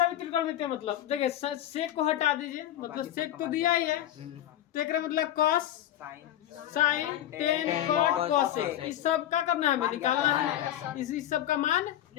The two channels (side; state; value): right; quieter; 12.2 dB